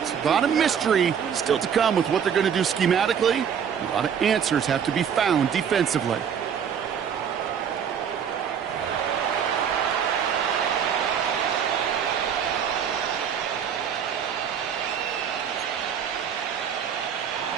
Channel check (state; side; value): quieter; left; 7.8 dB